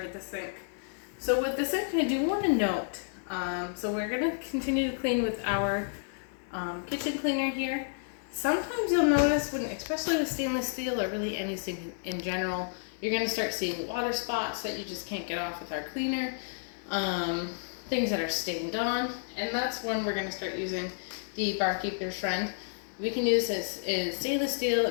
with the sink. So with the sink, I do want to note, so we're going to continue to clean with our kitchen cleaner here. Sometimes you'll notice when, especially with stainless steel or really any sink in general, you're gonna start seeing water spots that you just can't get off with our cleaner, things that are stained on, and that's when we're gonna start using the barkeeper's friend. We can use this in stainless steel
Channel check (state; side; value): silent; right; digital silence